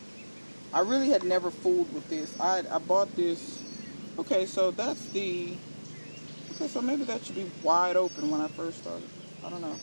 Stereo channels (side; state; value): both; inverted; correlation -1.00